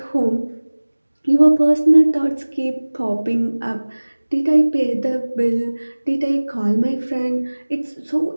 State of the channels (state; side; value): inverted; both; correlation -1.00